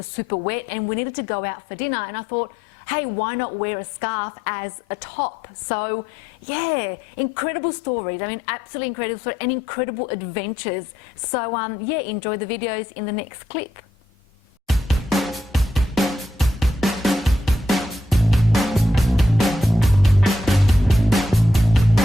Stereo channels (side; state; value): both; normal; correlation 0.79